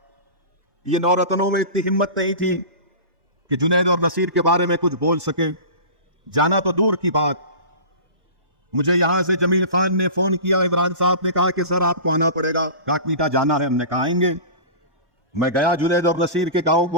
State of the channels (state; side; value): late; left; 1.1 ms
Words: ये नौरतनों में इतनी हिम्मत नहीं थी कि जुनैद और नसीर के बारे में कुछ बोल सके। जाना तो दूर की बात, मुझे यहां से जमील खान ने फोन किया, इमरान साहब ने कहा कि सर आपको आना पड़ेगा, काकमीठा जाना है। हमने कहा आएंगे। मैं गया जुनैद और नसीर के गांव